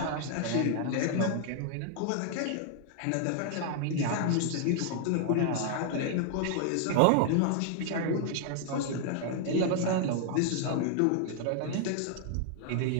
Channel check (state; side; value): different; both; correlation 0.00